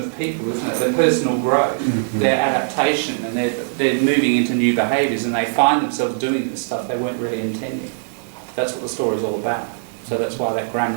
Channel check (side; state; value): left; silent; digital silence